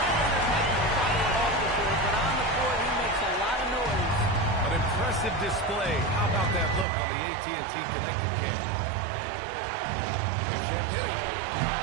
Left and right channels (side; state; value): left; drops out; at 6.9 s